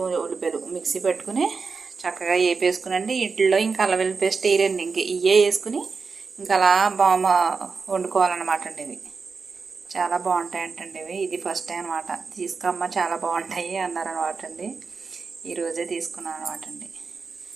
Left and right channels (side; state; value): left; quieter; 4.9 dB